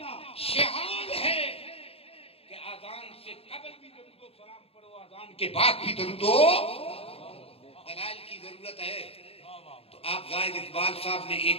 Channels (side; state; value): right; late; 0.28 ms